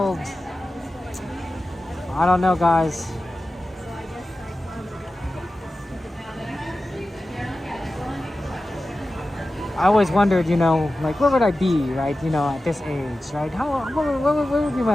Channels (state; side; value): normal; both; correlation 0.94